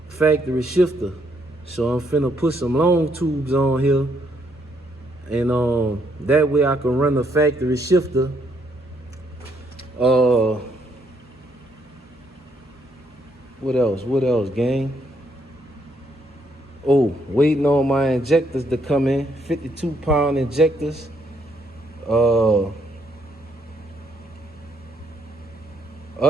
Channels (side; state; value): both; normal; correlation 0.72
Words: factory shifter. So I'm finna put some long tubes on here, and that way I can run the factory shifter. What else, gang? Oh, waiting on my injectors to come in, 52-pound injectors.